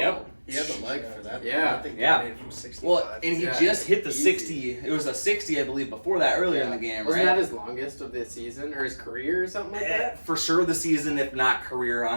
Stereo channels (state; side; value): inverted; both; correlation -1.00